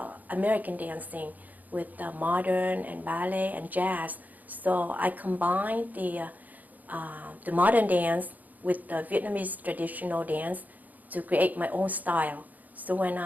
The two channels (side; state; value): left; late; 0.081 ms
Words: American dancing, with modern and ballet and jazz. So I combined the modern dance with the Vietnamese traditional dance to create my own style. So when